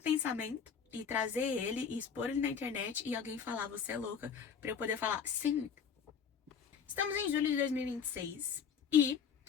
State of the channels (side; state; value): right; quieter; 6.9 dB